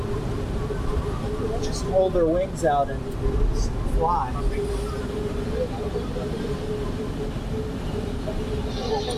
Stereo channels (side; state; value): both; identical; correlation 1.00